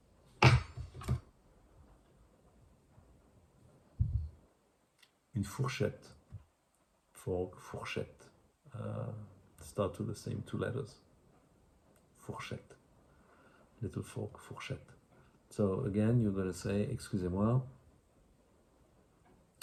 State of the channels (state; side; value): identical; both; correlation 1.00